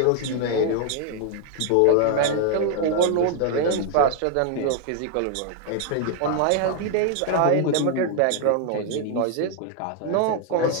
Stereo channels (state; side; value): different; both; correlation 0.00